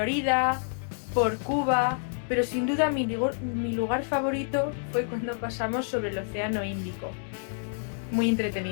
por Cuba, pero sin duda mi lugar favorito fue cuando pasamos sobre el Océano Índico. Muy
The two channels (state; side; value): silent; right; digital silence